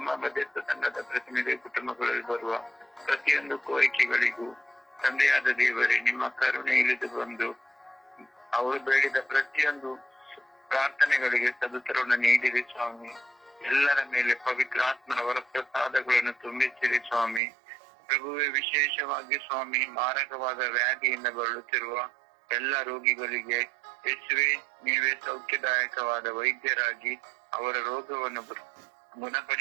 ಮಧ್ಯಸ್ಥ ತಂಡದ ಪ್ರತಿನಿಧಿ ಕುಟುಂಬಗಳಲ್ಲಿ ಬರುವ ಪ್ರತಿಯೊಂದು ಕೋರಿಕೆಗಳಿಗೂ ತಂದೆಯಾದ ದೇವರೇ, ನಿಮ್ಮ ಕರುಣೆ ಇಳಿದು ಬಂದು ಅವರು ಬೇಡಿದ ಪ್ರತಿಯೊಂದು ಪ್ರಾರ್ಥನೆಗಳಿಗೆ ಸದುತ್ತರವನ್ನು ನೀಡಿರಿ ಸ್ವಾಮಿ. ಎಲ್ಲರ ಮೇಲೆ ಪವಿತ್ರಾತ್ಮನ ವರಪ್ರಸಾದಗಳನ್ನು ತುಂಬಿಸಿರಿ ಸ್ವಾಮಿ. ಪ್ರಭುವೆ, ವಿಶೇಷವಾಗಿ ಸ್ವಾಮಿ, ಮಾರಕವಾದ ವ್ಯಾಧಿಯಿಂದ ಬಳಲುತ್ತಿರುವ ಎಲ್ಲ ರೋಗಿಗಳಿಗೆ ಯೇಸುವೆ, ನೀವೇ ಸೌಖ್ಯದಾಯಕವಾದ ವೈದ್ಯರಾಗಿ ಅವರ ರೋಗವನ್ನು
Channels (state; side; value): drops out; left; at 17.4 s